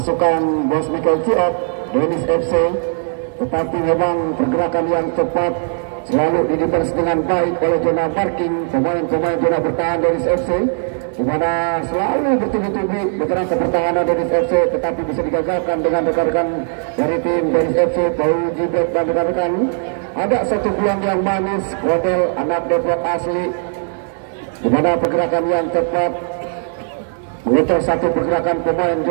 Bos Michael Ciok, Dennis FC, tetapi memang pergerakan yang cepat selalu didefense dengan baik oleh zona parking pemain-pemain zona bertahan Dennis FC, di mana selalu bertubi-tubi bergerak ke pertahanan Dennis FC, tetapi bisa digagalkan dengan rekan-rekan dari tim Dennis FC, Bau Jibet dan rekan-rekan. Ada satu peluang yang manis, Kodel anak Depok asli, di mana pergerakan yang cepat mengutus satu pergerakan pemain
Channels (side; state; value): left; silent; 67 dB below the other